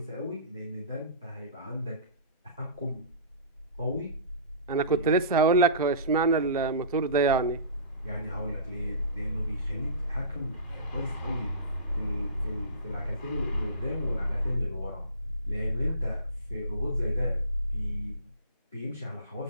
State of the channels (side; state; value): both; inverted; correlation -0.37